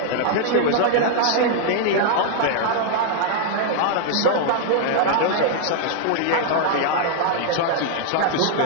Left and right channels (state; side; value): different; both; correlation 0.00